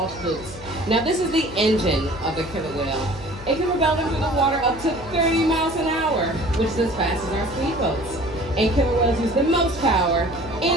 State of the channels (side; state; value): left; noise; hum, 16 dB below the sound